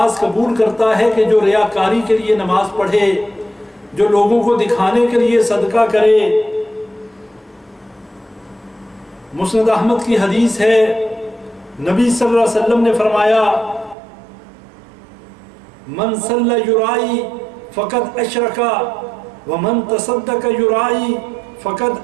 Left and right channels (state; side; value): drops out; left; at 14.0 s